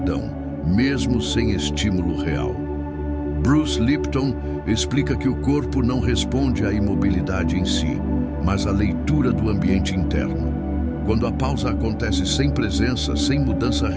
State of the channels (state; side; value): identical; both; correlation 1.00